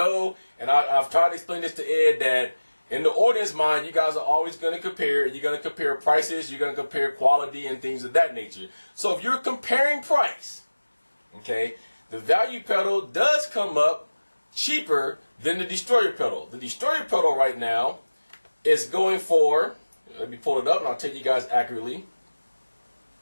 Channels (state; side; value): inverted; both; correlation -1.00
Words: and I've tried to explain this to Ed, that in the audience mind, you guys are always going to compare. You're going to compare prices. You're going to compare quality and things of that nature. So if you're comparing price, okay, the value pedal does come up cheaper than the destroyer pedal. The destroyer pedal right now is going for, let me pull it up and I'll tell you guys accurately.